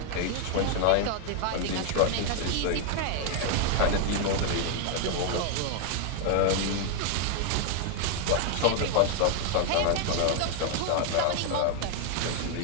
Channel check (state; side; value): different; both; correlation 0.00